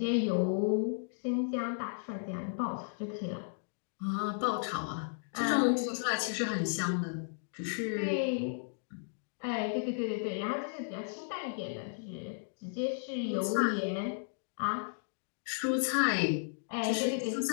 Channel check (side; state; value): right; silent; digital silence